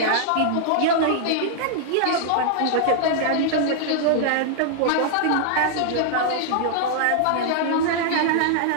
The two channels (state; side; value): different; both; correlation -0.01